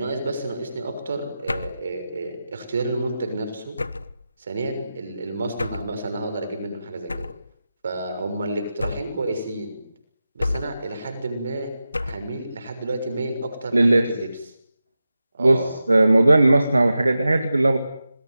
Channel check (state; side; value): inverted; both; correlation -0.92